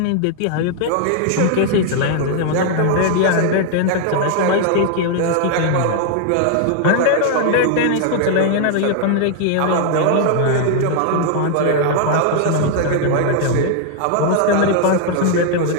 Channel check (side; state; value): both; different; correlation 0.00